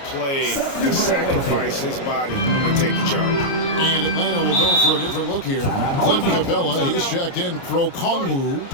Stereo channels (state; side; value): late; right; 29 ms